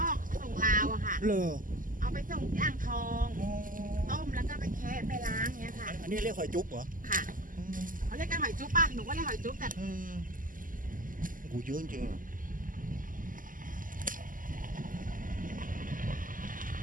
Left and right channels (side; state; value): left; late; 0.39 ms